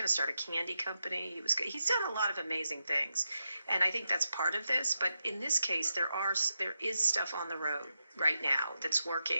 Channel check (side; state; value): both; inverted; correlation -0.87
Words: to start a candy company. He's done a lot of amazing things. And I think that's part of this. But in this case, there is stuff on the road right now that's